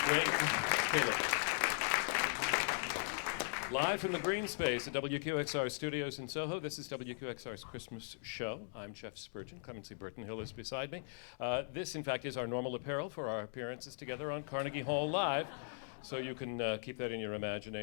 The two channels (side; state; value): right; silent; digital silence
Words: Gregg Kallor. Live from the Greene Space at WQXR Studios in Soho, this is WQXR's Christmas show. I'm Chef Spurgeon. Clemency Burton-Hill is beside me. This, in fact, is our normal apparel for our appearances together on Carnegie Hall Live. So you can keep that in your